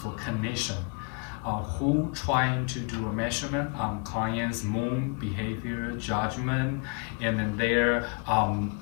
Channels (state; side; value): quieter; right; 33.0 dB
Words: clinicians who trying to do a measurement on clients' mood, behavior, judgment, and then their,